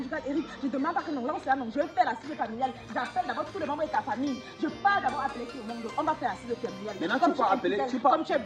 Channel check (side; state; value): both; identical; correlation 1.00